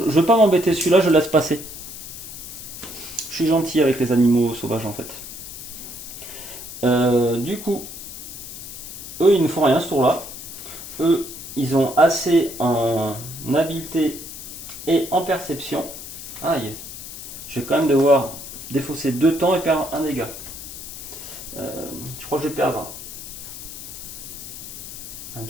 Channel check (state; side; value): noise; left; hiss, 11 dB below the sound